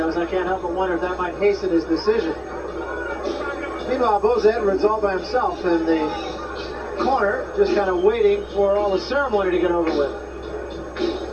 I can't help but wonder if that might hasten his decision. Meanwhile, Boza Edwards all by himself in the corner, just kind of waiting for all the ceremony to get over with.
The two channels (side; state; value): both; identical; correlation 1.00